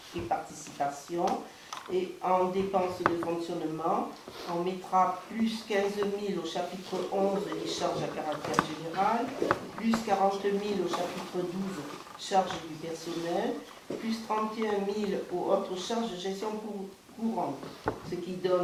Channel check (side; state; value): both; identical; correlation 1.00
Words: et participations. Et en dépenses de fonctionnement, on mettra plus 15 000 au chapitre 11 des charges à caractère général, plus 40 000 au chapitre 12 charges du personnel, plus 31 000 aux autres charges de gestion courante, ce qui